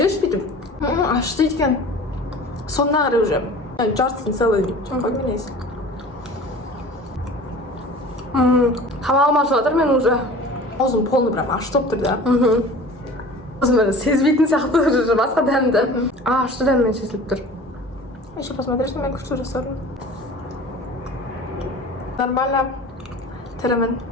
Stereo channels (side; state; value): both; normal; correlation 0.41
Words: бүйтіп. Ашты екен. Сонына қарай уже. Жартысын целый. Жаққа менейсің. Тамағым ашып жатыр мен уже. Аузым полный прям ашты болып тұр да. Өзім сезбейтін сияқты уже басқа дәмді. Ашты дәммен сезіліп тұр. Еще посмотришь на меня, что жасадым. Нормально. Тірімін,